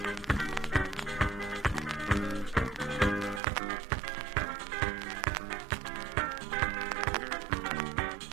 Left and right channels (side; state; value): left; drops out; at 3.4 s